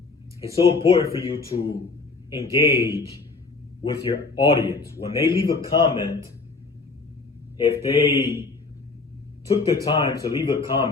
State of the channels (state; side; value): quieter; right; 4.0 dB